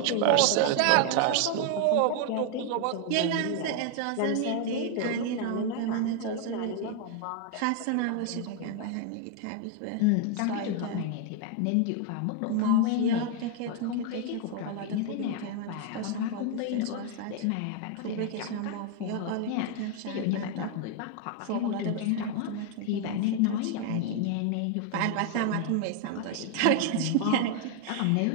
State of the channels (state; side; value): different; both; correlation 0.00